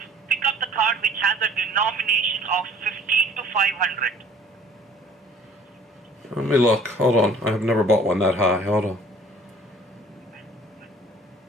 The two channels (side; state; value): both; normal; correlation 0.52